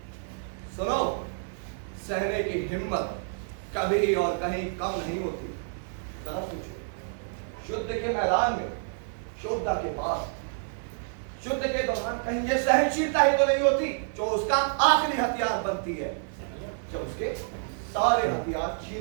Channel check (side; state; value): left; silent; digital silence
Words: सुनो, सहने की हिम्मत कभी और कहीं कम नहीं होती। जरा सोचो, युद्ध के मैदान में, योद्धा के पास युद्ध के दौरान कहीं ये सहनशीलता ही तो नहीं होती जो उसका आखिरी हथियार बनती है, जब उसके सारे हथियार छीन